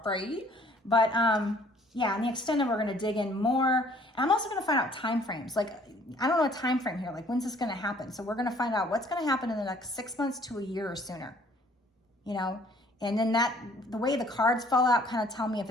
But yeah, in the extended, we're going to dig in more. And I'm also going to find out time frames. Like, I don't know a time frame here. Like, when's this going to happen? So we're going to find out what's going to happen in the next 6 months to a year or sooner. And then the way the cards fall out kind of tell me if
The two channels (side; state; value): both; normal; correlation 0.58